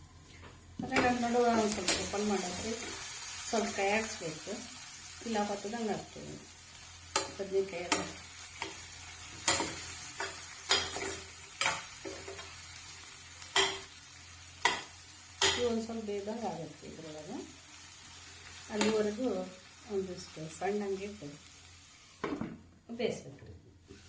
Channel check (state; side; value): identical; both; correlation 1.00